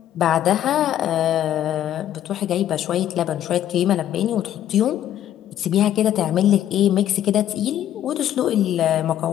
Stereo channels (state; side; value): quieter; right; 11.4 dB